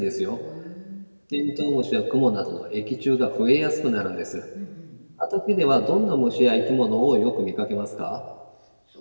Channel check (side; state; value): both; inverted; correlation -1.00